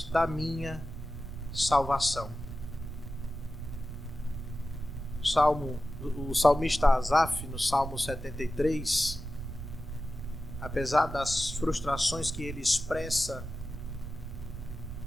da salvação. O salmista Asaf, no Salmo 73, apesar das frustrações que ele expressa,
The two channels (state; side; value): noise; right; rumble, 8 dB below the sound